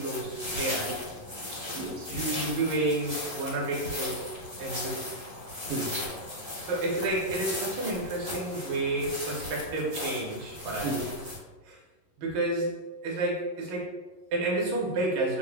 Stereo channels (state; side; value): late; left; 11 ms